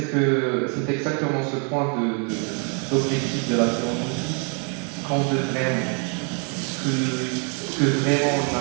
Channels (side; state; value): left; quieter; 39.6 dB